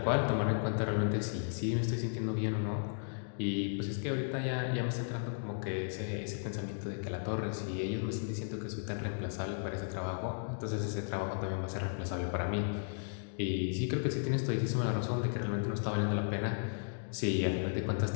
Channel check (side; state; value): right; silent; digital silence